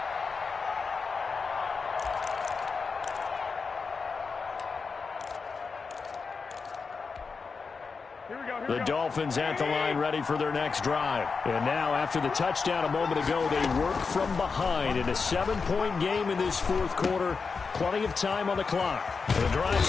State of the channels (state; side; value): quieter; right; 4.9 dB